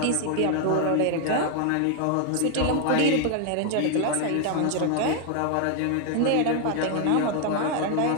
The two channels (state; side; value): different; both; correlation 0.00